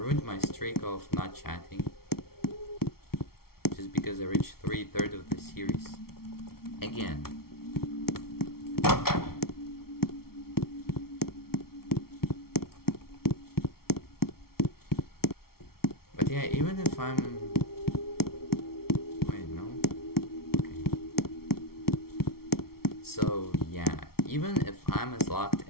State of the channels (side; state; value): right; late; 0.94 ms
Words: my streak of not chatting. Just because I reached 3/3 of the series. Again. But yeah, even if I'm... Wait, no? Okay. So, yeah. even if I'm as locked